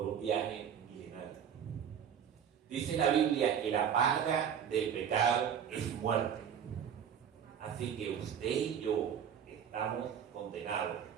un viaje milenario. Dice la Biblia que la paga del pecado es muerte. Así que usted y yo estamos condenados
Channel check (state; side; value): quieter; left; 8.3 dB